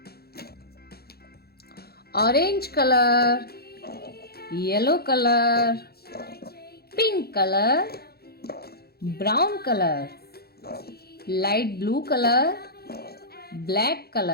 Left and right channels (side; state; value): right; late; 0.46 ms